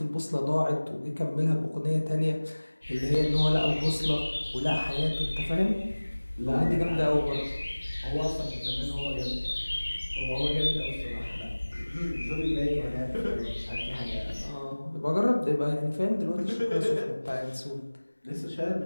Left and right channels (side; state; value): both; inverted; correlation -1.00